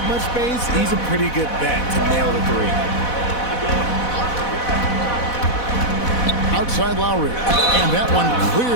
much space, he's a pretty good bet to nail the 3. Outside Lowry. And that one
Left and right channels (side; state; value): right; late; 4.1 ms